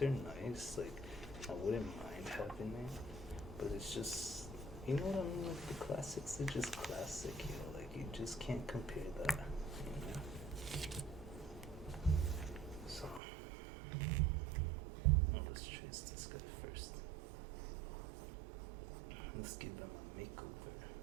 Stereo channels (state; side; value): drops out; left; at 13.2 s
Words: nice, like I wouldn't mind having it, but it's just, you know what I mean? Like the classics are just classic, you know. Like you just can't compare that, you know. So well, let's trace this guy first. Let's give him a makeover.